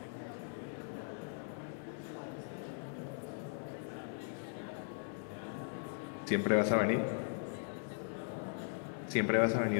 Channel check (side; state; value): right; silent; digital silence